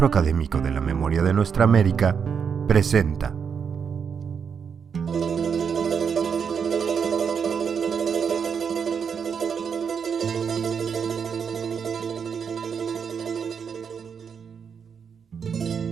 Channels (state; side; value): quieter; left; 6.7 dB